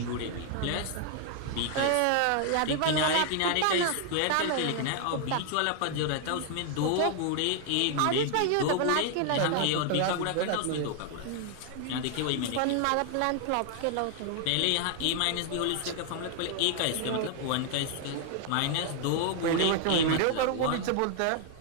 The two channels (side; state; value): both; different; correlation 0.00